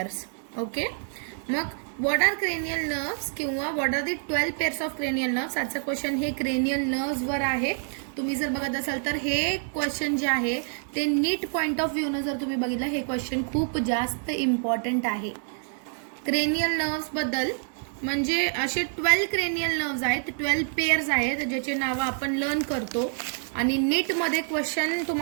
ओके, मग व्हॉट आर क्रेनियल नर्व्स किंवा what are the 12 pairs of cranial nerves. आजचा क्वेश्चन हे क्रेनियल नर्व्स वर आहे. तुम्ही जर बघत असाल तर हे क्वेश्चन जे आहे ते नीट पॉइंट ऑफ व्ह्यू न जर तुम्ही बघितलं, हे क्वेश्चन खूप जास्त इम्पॉर्टंट आहे. क्रेनियल नर्व्स बद्दल म्हणजे असे 12 क्रेनियल नर्व्स आहेत, 12 पेयर्स आहेत ज्याचे नाव आपण लर्न करतो. आणि नीट मध्ये क्वेश्चन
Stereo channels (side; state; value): left; silent; 58 dB below the other